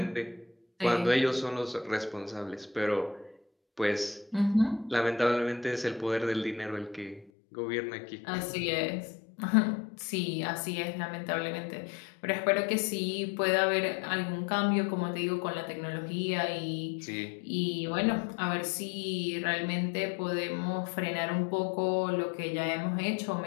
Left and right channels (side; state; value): right; drops out; at 7.3 s